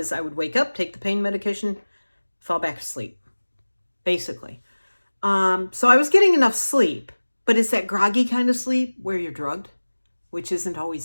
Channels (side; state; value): both; inverted; correlation -1.00